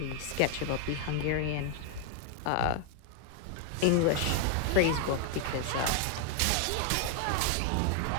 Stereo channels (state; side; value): different; both; correlation 0.00